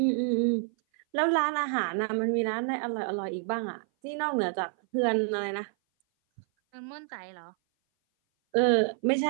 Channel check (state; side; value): silent; left; 57 dB below the other